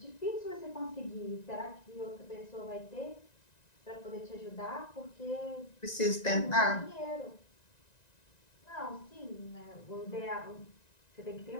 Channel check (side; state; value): right; late; 1.9 ms